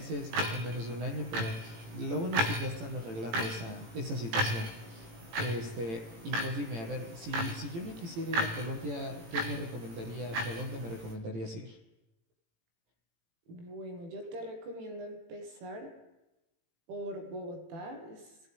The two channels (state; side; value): late; left; 18 ms